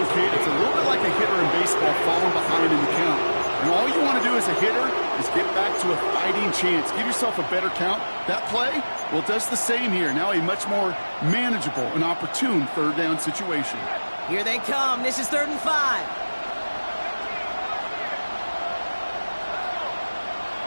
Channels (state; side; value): inverted; both; correlation -1.00